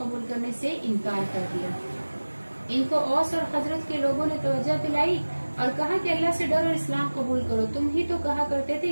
करने से इनकार कर दिया। इनको औस और खजरत के लोगों ने तवज्जो दिलाई और कहा कि अल्लाह से डरो और इस्लाम कबूल करो। तुम ही तो कहा करते थे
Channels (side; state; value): both; inverted; correlation -1.00